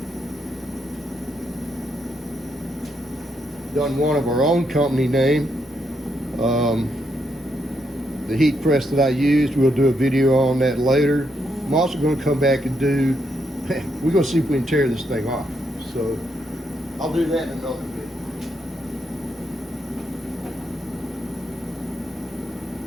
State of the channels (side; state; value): both; normal; correlation 0.78